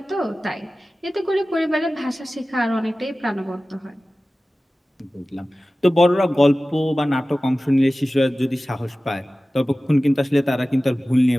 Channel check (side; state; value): both; normal; correlation 0.96